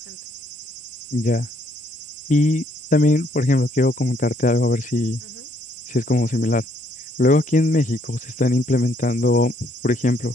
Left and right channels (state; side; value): normal; both; correlation 0.69